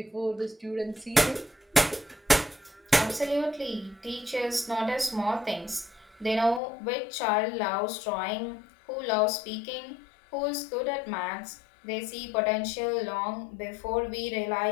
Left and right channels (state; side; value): drops out; right; at 6.6 s